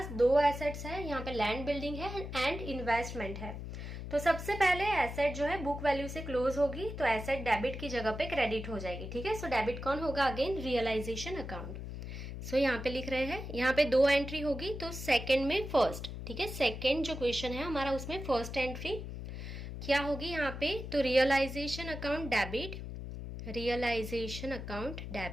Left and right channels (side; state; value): left; noise; hum, 8 dB below the sound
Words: 2 एसेट्स है। यहाँ पे लैंड बिल्डिंग है एंड इन्वेस्टमेंट है। तो सबसे पहले एसेट जो है बुक वैल्यू से क्लोज होगी तो एसेट डेबिट की जगह पे क्रेडिट हो जाएगी। ठीक है। डेबिट कौन होगा? Again realization account. यहाँ पे लिख रहे हैं, यहाँ पे 2 एंट्री होगी तो सेकंड में फर्स्ट। ठीक है। सेकंड जो क्वेश्चन है हमारा उसमें फर्स्ट एंट्री क्या होगी यहाँ पे? तो realisation account debit, realisation account